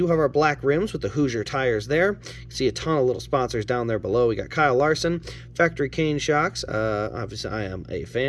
have our black rims with the Hoosier tires there. You can see a ton of little sponsors down there below. We got Kyle Larson, Factory Cane shocks. Obviously, I am a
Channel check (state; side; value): identical; both; correlation 1.00